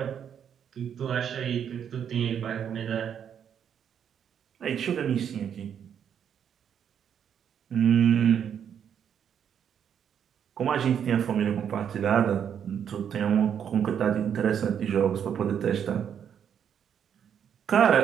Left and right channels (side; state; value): left; quieter; 8.4 dB